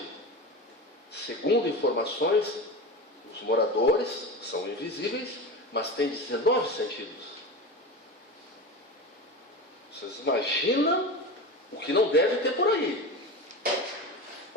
segundo informações, os moradores são invisíveis, mas têm 19 sentidos. Vocês imaginam o que não deve ter por aí,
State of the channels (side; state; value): both; normal; correlation 0.26